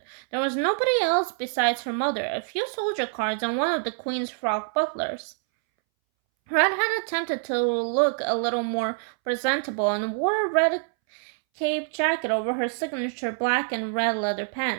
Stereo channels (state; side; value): silent; left; 61 dB below the other